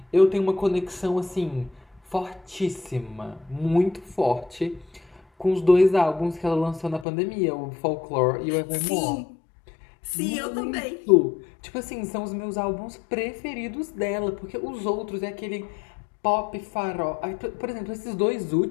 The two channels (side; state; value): right; drops out; at 7.1 s